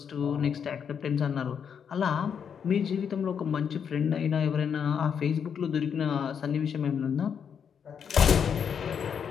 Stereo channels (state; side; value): quieter; right; 7.4 dB